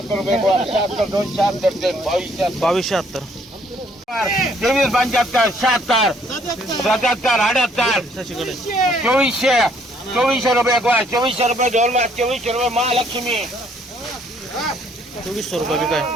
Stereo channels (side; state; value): both; normal; correlation 0.65